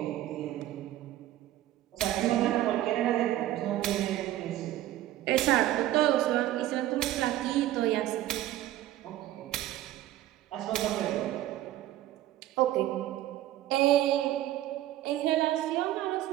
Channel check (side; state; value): left; quieter; 14.1 dB